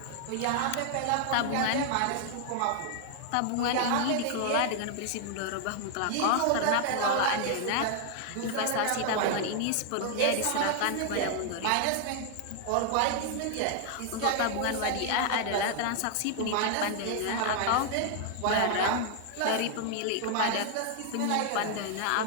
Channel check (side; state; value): both; different; correlation 0.00